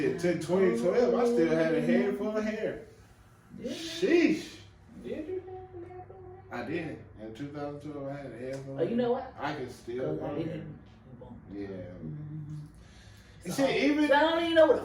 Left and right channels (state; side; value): identical; both; correlation 1.00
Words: Took 2012. I still had a head full of hair. Sheesh. Did you? I did. In 2012, I had a head full of Oh, you know what? I can still I grow hair. didn't. Yeah. So, See, even I don't even know